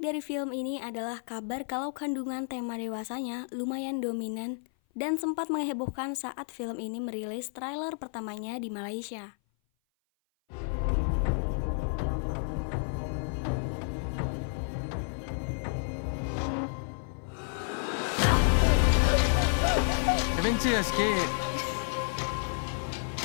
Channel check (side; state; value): right; silent; 56 dB below the other